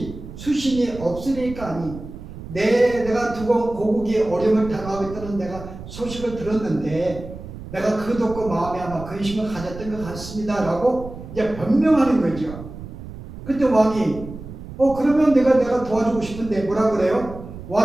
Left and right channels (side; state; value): right; noise; rumble, 13 dB below the sound